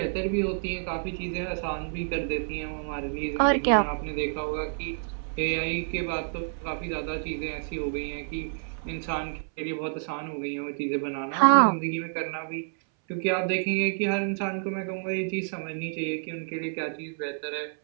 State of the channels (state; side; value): silent; left; 59 dB below the other